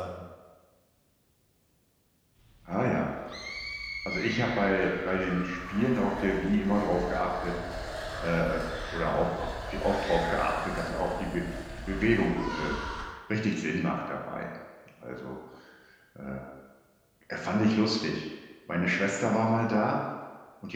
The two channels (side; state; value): both; identical; correlation 1.00